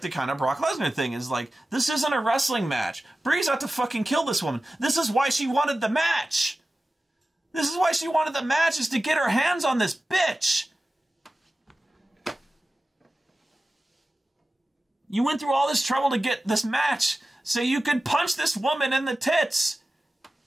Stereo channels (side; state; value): both; normal; correlation 0.95